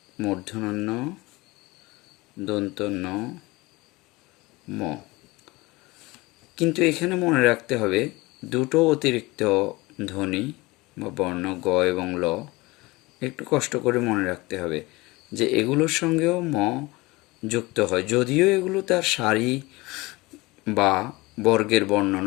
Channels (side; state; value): right; quieter; 22.3 dB